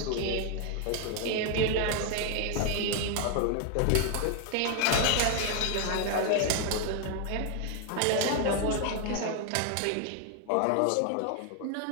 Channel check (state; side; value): different; both; correlation 0.00